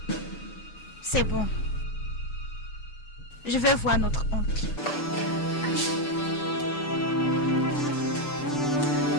C'est bon. Je vais voir notre oncle.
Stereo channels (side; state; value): right; late; 6.8 ms